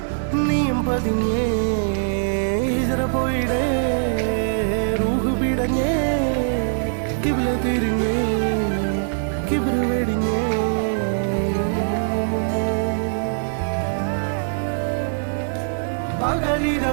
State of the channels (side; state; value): left; silent; digital silence